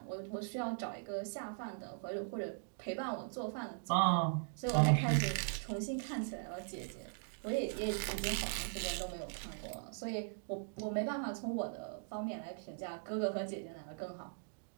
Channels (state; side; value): silent; left; digital silence